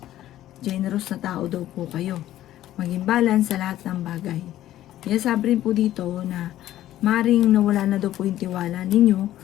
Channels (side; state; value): right; quieter; 13.4 dB